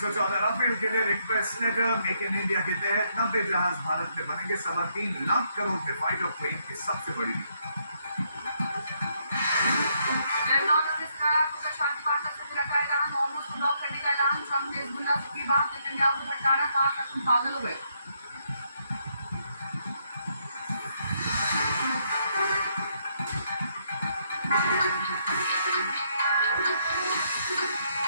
राफेल के लिए request letter. Make in India के तहत 90 जहाज भारत में बनेंगे। 3.25 लाख करोड़ के फाइटर प्लेन की सबसे बड़ी। ट्रंप ने हिजबुल्लाह की बात नेतन्याहू को भड़काना, कहा कि तुम पागल हो गए।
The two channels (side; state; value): both; inverted; correlation -0.74